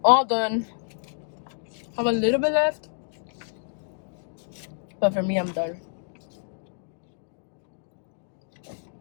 all done. Have a little bit left, but for me, I'm done.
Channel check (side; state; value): right; silent; digital silence